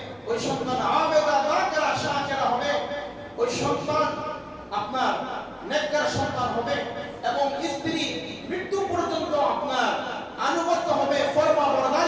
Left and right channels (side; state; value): both; identical; correlation 1.00